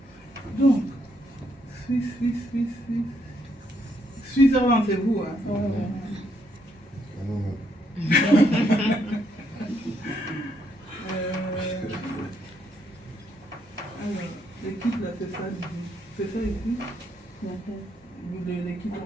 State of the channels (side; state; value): both; normal; correlation 0.74